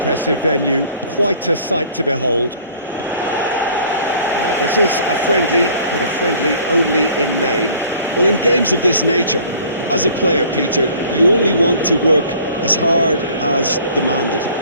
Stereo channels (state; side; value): inverted; both; correlation -0.52